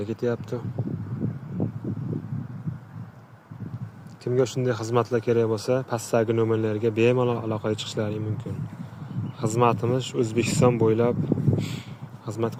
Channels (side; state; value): both; identical; correlation 1.00